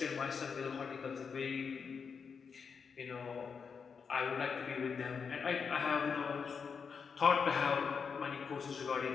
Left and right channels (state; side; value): quieter; right; 5.9 dB